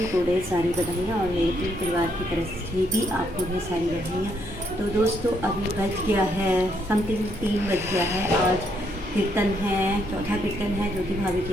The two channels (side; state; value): both; normal; correlation 0.74